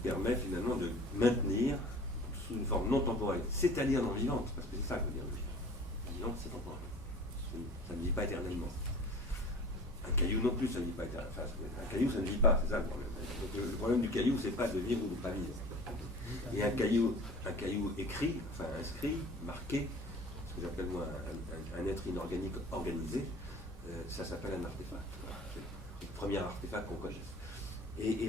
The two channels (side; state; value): both; normal; correlation 0.42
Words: finalement de maintenir sous une forme non temporelle, c'est-à-dire non vivante, parce que c'est ça que veut dire le vivant. Vivante, c'est temporel. Ça ne vit pas éternellement. Un caillou non plus, ça ne vit pas éternellement. Enfin, un caillou, ça ne vit pas, c'est ça le problème. Donc, le problème du caillou, c'est pas de vivre ou de ne pas vivre. Et un caillou écrit, enfin inscrit, marqué, ce que j'appelle moi un être inorganique organisé, ça s'appelle un artefact. C'est le premier artefact qu'on connaisse. Et